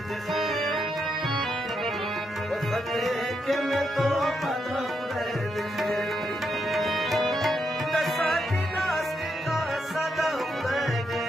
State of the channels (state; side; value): normal; both; correlation 0.81